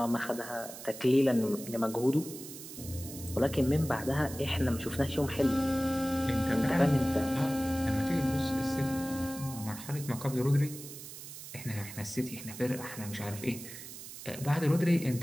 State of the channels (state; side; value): noise; right; hiss, 12 dB below the sound